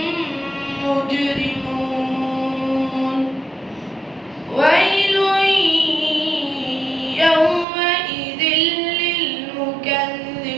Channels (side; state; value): left; drops out; at 7.7 s